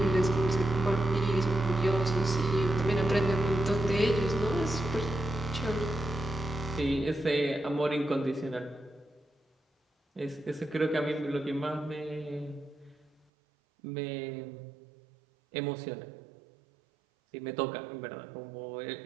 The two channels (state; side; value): drops out; left; at 13.2 s